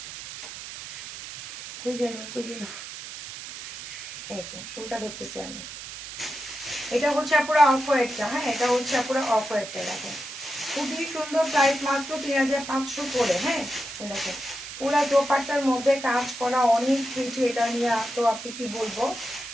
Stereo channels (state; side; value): noise; right; hiss, 11 dB below the sound